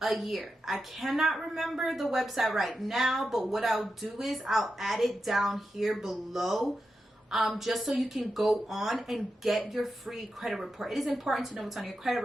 a year. I cannot remember the website right now, but what I'll do is I'll add it down here below, just so you can go on and get your free credit report. It is important to know what's on your credit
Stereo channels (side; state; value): both; normal; correlation 0.89